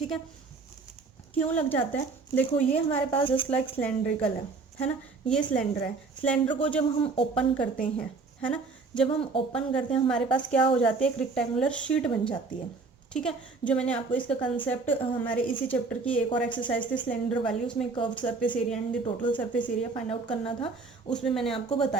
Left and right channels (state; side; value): quieter; left; 4.2 dB